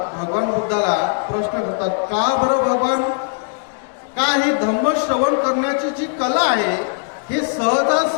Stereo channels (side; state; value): right; silent; digital silence